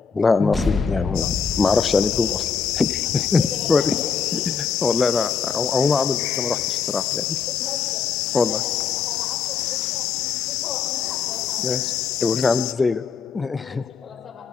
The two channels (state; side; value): quieter; right; 6.0 dB